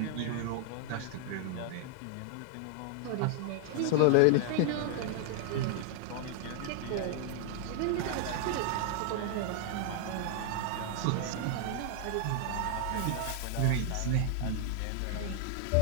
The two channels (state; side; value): different; both; correlation 0.00